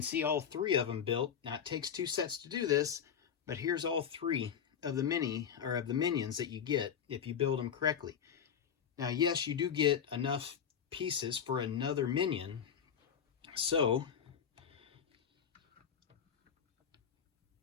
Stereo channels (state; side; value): quieter; right; 8.0 dB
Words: see all 3 of them built. Now it takes 2 sets to do this, but here's all 3 of the minions that you get if you build them correctly. Now, yes, you do get enough pieces for another minion, so